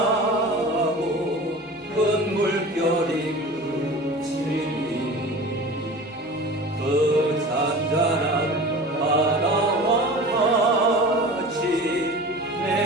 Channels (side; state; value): both; normal; correlation 0.37